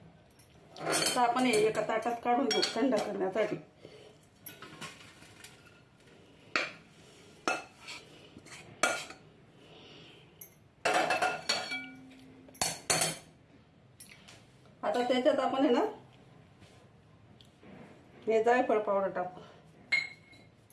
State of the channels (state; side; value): identical; both; correlation 1.00